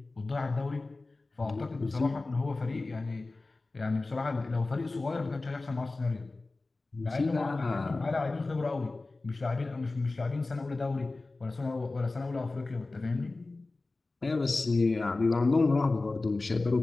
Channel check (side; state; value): right; quieter; 3.4 dB